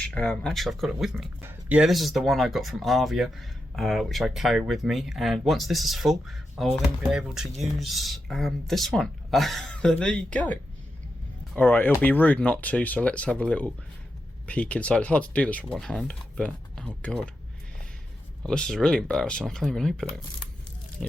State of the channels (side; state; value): both; normal; correlation 0.87